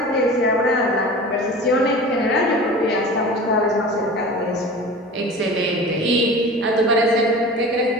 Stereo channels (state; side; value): normal; both; correlation 0.37